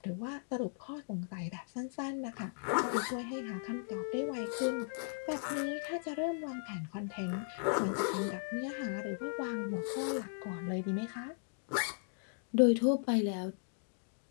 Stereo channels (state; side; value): silent; right; digital silence